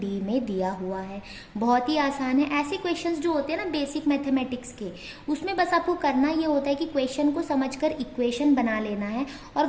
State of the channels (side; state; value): both; identical; correlation 1.00